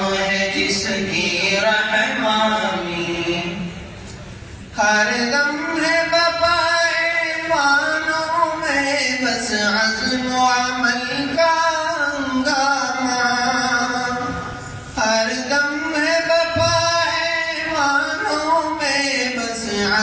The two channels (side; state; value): both; identical; correlation 1.00